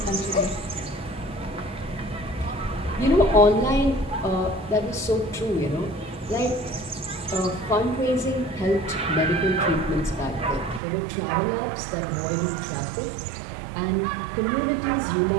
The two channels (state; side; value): drops out; left; at 10.8 s